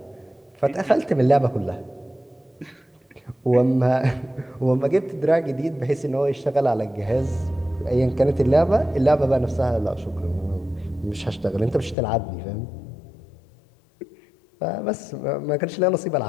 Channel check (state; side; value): drops out; right; at 12.0 s